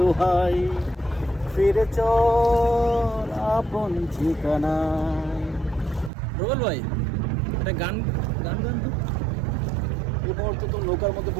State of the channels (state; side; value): drops out; left; at 6.1 s